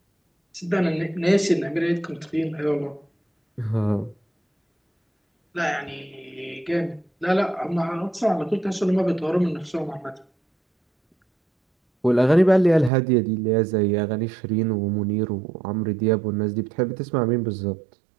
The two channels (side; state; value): left; drops out; at 12.9 s